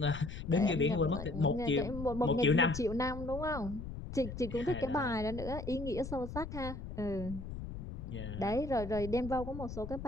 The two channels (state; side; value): noise; left; rumble, 8 dB below the sound